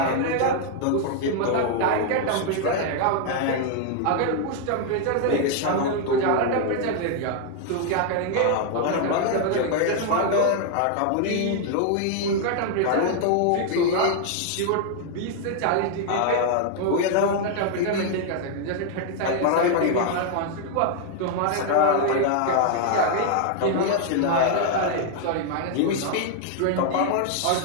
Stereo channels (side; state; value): both; different; correlation 0.00